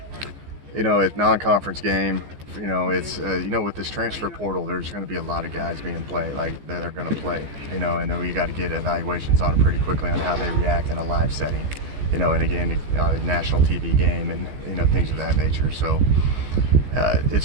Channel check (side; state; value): left; late; 15 ms